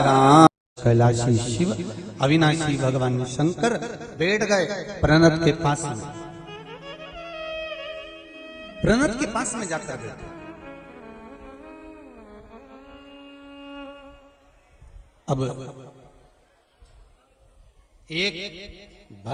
कैलाशी शिव अविनाशी भगवान शंकर बैठ गए प्रणत के पास में। प्रणत के पास में जाकर बैठे अब एक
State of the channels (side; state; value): both; identical; correlation 1.00